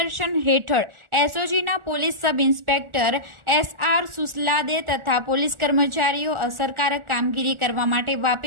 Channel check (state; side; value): late; left; 1.4 ms